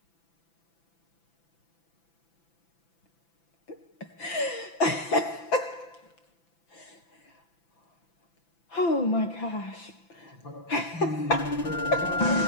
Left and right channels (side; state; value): right; late; 6.0 ms